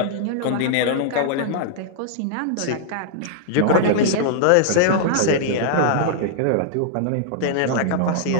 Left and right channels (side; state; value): both; different; correlation -0.01